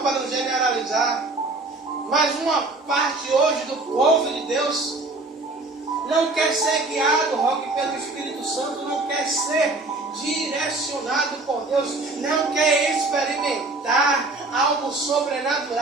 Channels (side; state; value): left; quieter; 3.2 dB